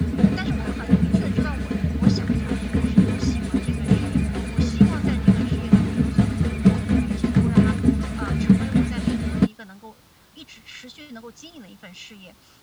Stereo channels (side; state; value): both; identical; correlation 1.00